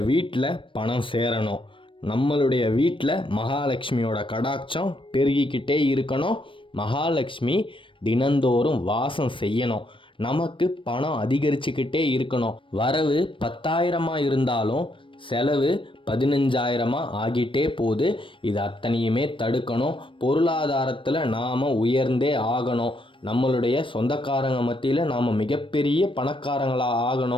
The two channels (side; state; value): right; late; 0.25 ms